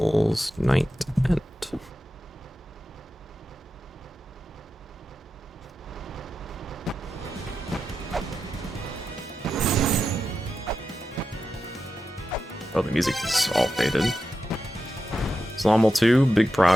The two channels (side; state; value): both; normal; correlation 0.90